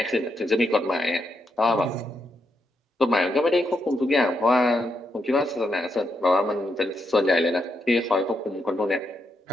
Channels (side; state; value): both; normal; correlation 0.81